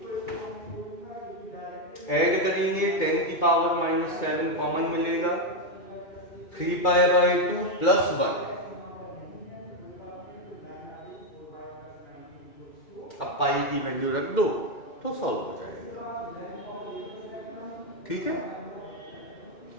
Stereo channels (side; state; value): right; late; 2.4 ms